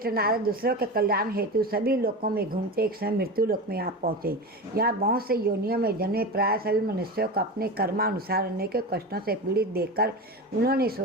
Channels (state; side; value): normal; both; correlation 0.25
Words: नारद दूसरों के कल्याण हेतु सभी लोकों में घूमते एक समय मृत्यु लोक में आप पहुँचे। यहाँ बहुत से योनियों में जन्मे प्राय सभी मनुष्यों को अपने कर्मानुसार अनेक कष्टों से पीड़ित देखकर उन्होंने